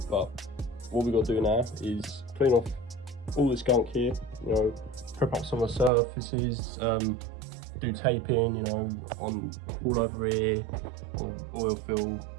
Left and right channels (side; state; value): left; drops out; at 5.9 s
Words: but what we've got to do now is clean off all this gunk here, you know, prep up some of the surfaces, do taping, you know, on all over here, on the oil fill